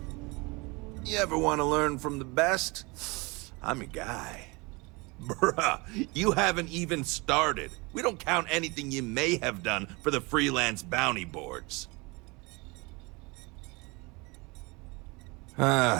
You ever want to learn from the best? I'm your guy. Bruh, you haven't even started. We don't count anything you may have done for the freelance bounty boards.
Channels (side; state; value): left; quieter; 26.6 dB